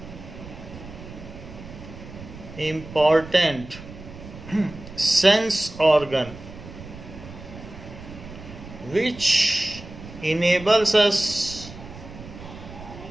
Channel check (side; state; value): right; noise; rumble, 15 dB below the sound